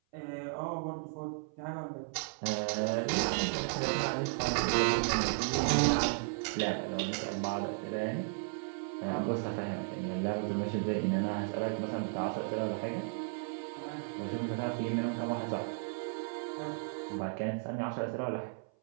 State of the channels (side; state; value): left; silent; 55 dB below the other